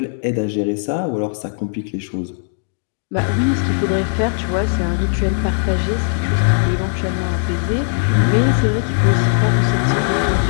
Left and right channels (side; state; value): right; silent; digital silence